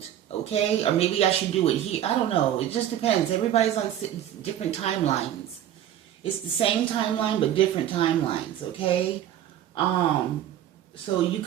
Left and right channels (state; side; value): quieter; left; 11.2 dB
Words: okay? Or maybe I should do it here. I don't know. It just depends. Everybody's on different timelines. It's the same timeline, but different timelines, okay? So you